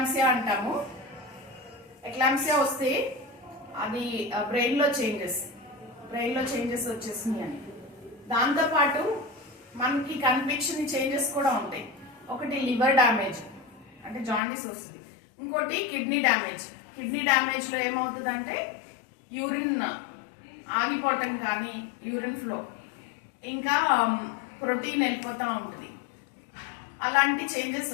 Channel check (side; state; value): right; drops out; at 14.4 s